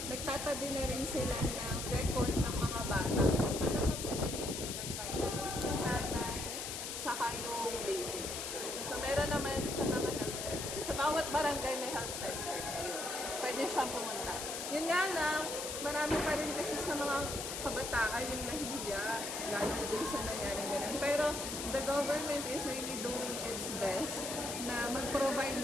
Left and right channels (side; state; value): left; noise; hiss, 5 dB below the sound